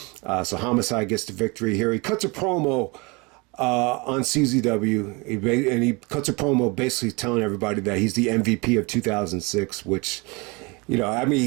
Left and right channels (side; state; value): left; quieter; 27.6 dB